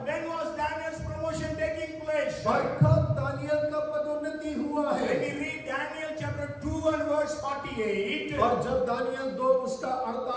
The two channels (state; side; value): identical; both; correlation 1.00